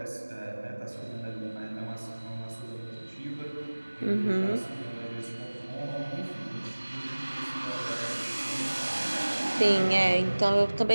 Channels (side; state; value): both; inverted; correlation -1.00